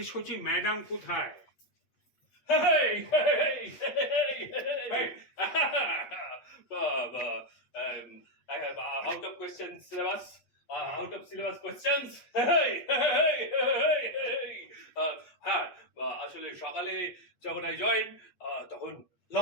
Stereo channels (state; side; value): late; right; 8.4 ms